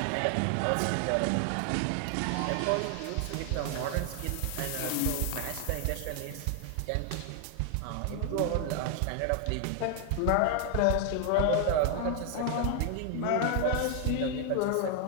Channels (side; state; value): both; different; correlation 0.00